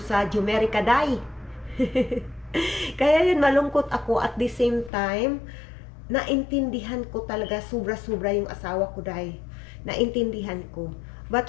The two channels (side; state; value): right; drops out; at 4.9 s